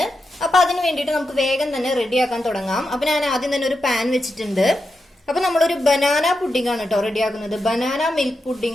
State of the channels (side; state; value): both; normal; correlation 0.87